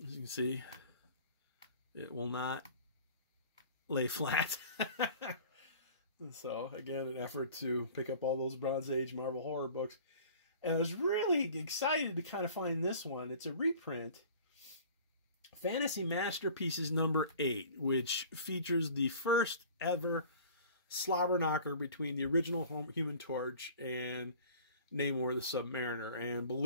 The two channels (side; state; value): both; inverted; correlation -0.45